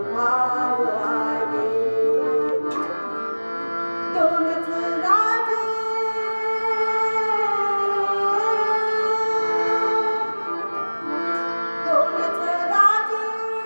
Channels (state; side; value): inverted; both; correlation -1.00